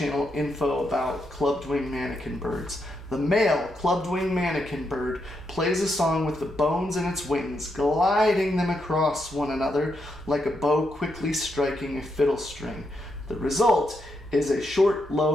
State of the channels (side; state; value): both; normal; correlation 0.81